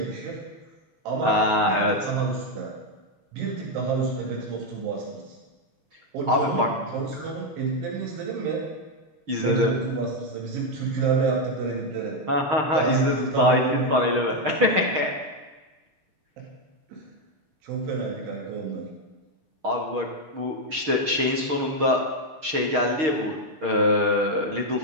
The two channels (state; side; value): late; left; 6.4 ms